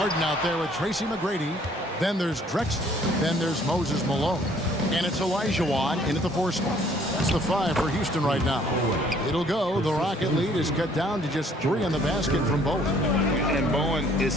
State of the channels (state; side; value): normal; both; correlation 0.60